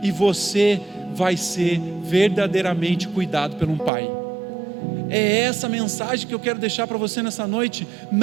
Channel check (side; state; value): left; drops out; at 3.9 s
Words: e você vai ser verdadeiramente cuidado por um pai. É essa mensagem que eu quero deixar para você nessa noite,